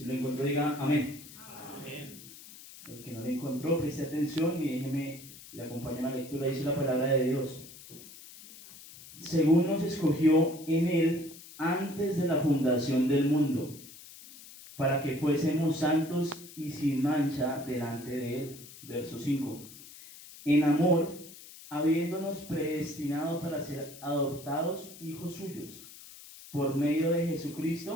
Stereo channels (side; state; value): left; noise; hiss, 17 dB below the sound